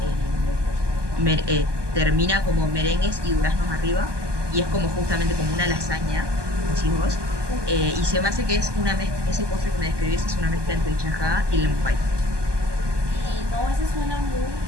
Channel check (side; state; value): left; late; 1.2 ms